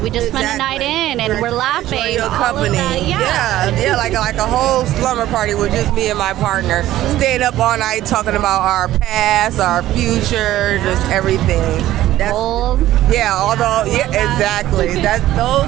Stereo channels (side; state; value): left; quieter; 14.3 dB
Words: We just spend a night in, and we're laughing. Enjoy your company. Yeah, like a whole slumber party with just me and my partner, staying up all night talking about our past, our future, just everything. Exactly.